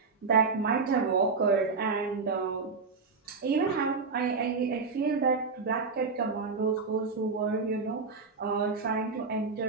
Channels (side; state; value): left; quieter; 4.7 dB